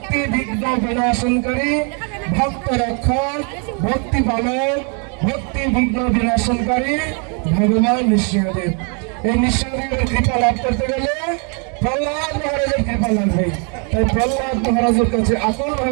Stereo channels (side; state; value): left; quieter; 37.8 dB